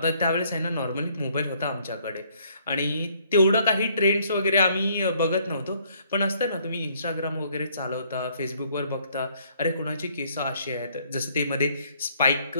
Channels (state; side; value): inverted; both; correlation -0.65